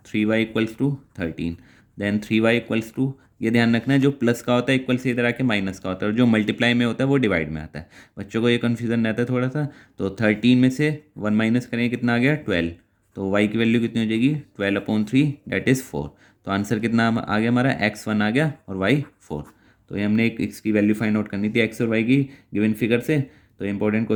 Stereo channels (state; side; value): identical; both; correlation 1.00